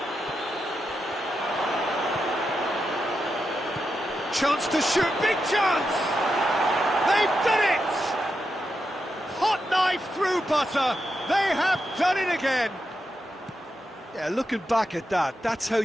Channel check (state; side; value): normal; both; correlation 0.86